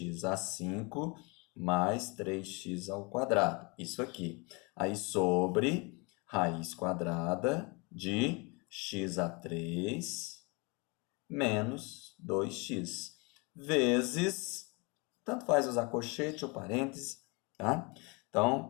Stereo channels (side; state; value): right; quieter; 29.3 dB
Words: a 5 mais 3x ao quadrado. Isso aqui. Aí, sobre raiz quadrada de x a 3 menos 2x. Vezes, tanto faz usar colchete ou parêntese, tá?